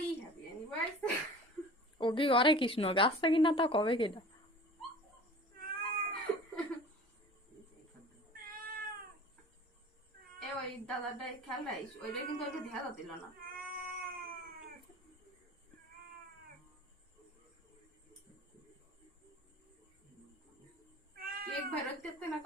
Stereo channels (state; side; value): normal; both; correlation 0.41